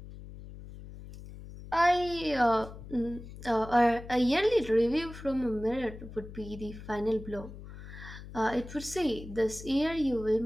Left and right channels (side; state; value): left; noise; hum, 14 dB below the sound